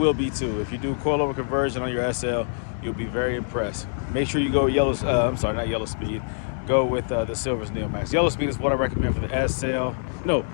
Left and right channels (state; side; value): silent; right; digital silence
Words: be too. If you do coilover conversion on your SL, you'll be very impressed. Make sure you go not yellow speed. Go with the Silvers Neomax. Yellow speed is what I recommend for the SL. No,